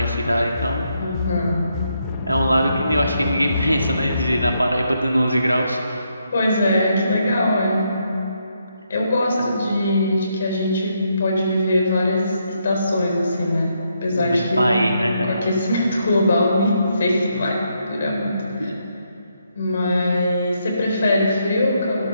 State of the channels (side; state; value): both; inverted; correlation -0.78